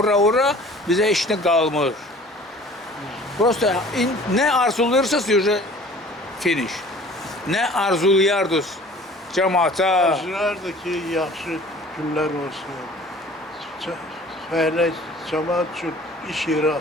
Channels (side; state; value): both; normal; correlation 0.48